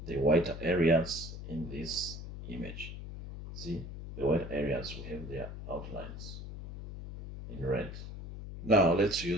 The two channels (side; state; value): left; noise; hum, 10 dB below the sound